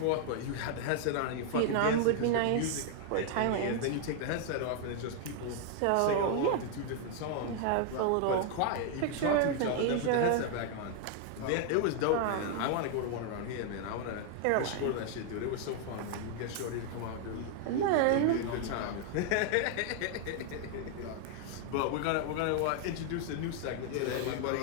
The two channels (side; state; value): both; different; correlation 0.00